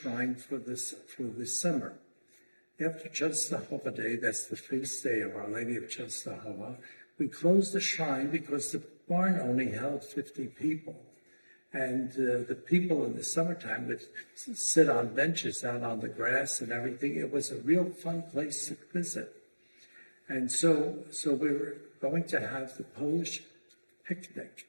for this summer. After Częstochowa Day, that's the feast day of Our Lady of Częstochowa, we closed the shrine because the barn only held 50 people. And the people in the summertime would sit on benches out on the grass and everything. It was a real fun place to visit. And so we were going to have the Polish picnic.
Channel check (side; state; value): both; inverted; correlation -1.00